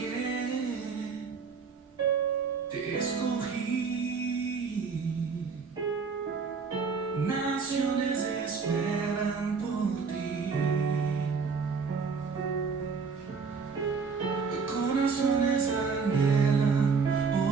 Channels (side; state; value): left; quieter; 5.2 dB